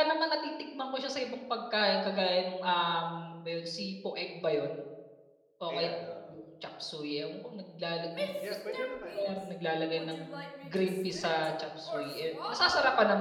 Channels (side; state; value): both; identical; correlation 1.00